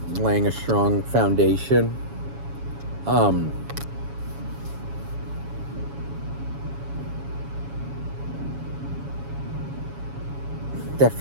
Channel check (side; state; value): left; late; 7.2 ms